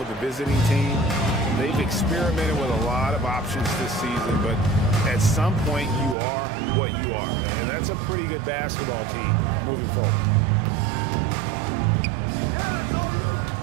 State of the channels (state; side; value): drops out; left; at 6.2 s